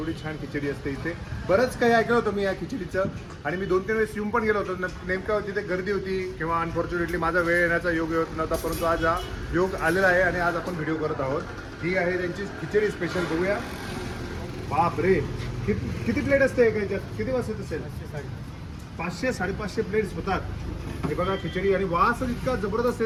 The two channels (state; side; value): identical; both; correlation 1.00